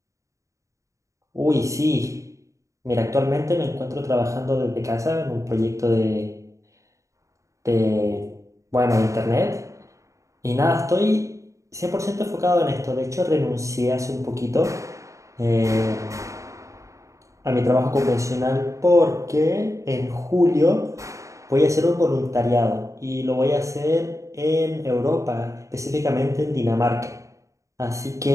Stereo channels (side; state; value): left; late; 0.15 ms